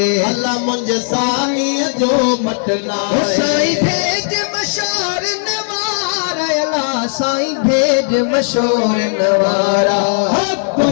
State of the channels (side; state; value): right; silent; digital silence